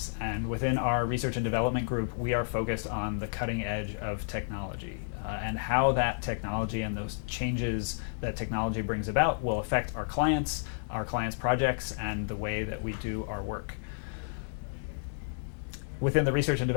And within our research and development group, we are focused on the cutting edge of technology and how that technology and those changes that technology brings about will affect our clients' projects, and the way that we do our work. Within the research and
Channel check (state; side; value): silent; right; 57 dB below the other